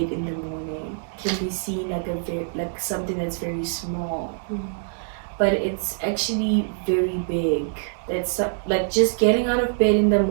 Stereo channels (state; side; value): silent; left; digital silence